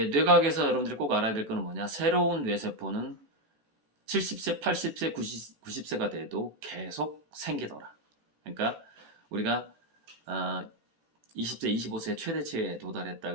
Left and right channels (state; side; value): late; left; 14 ms